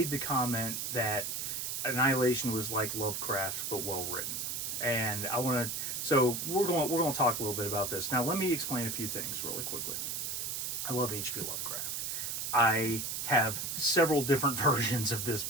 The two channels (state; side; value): noise; right; hiss, 3 dB below the sound